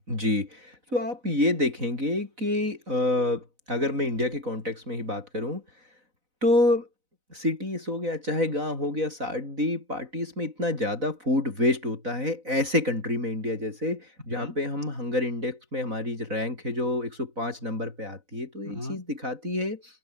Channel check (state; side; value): late; left; 4.0 ms